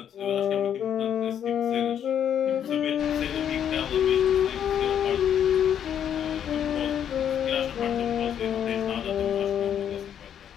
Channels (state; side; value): quieter; right; 9.3 dB